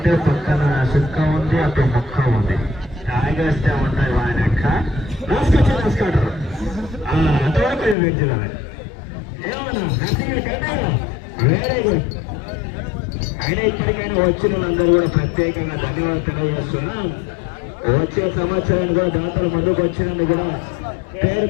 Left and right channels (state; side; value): drops out; right; at 8.0 s